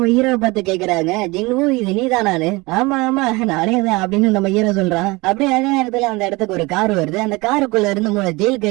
ஹீரோவை பார்த்து கேக்குறாங்க, ஜிங்கு இது நீதானானு? ஆமா ஆமா நானே தான் அப்படின்னு நம்ம ஹீரோ சொல்றான். அப்படியே அதே நேரத்துல அந்த இடத்துக்கு ஒரு கார் வருது. அந்த காருக்குள்ள இருந்து 3 ஜெயில்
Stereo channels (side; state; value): left; quieter; 23.8 dB